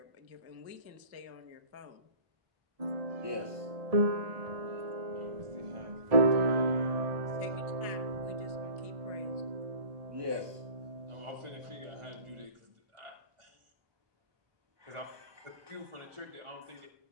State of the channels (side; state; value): left; late; 1.2 ms